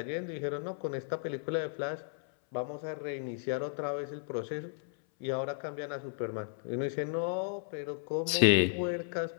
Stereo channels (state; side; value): silent; right; 55 dB below the other